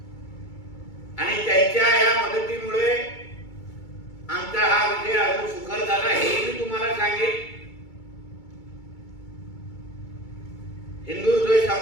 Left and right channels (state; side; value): late; right; 2.3 ms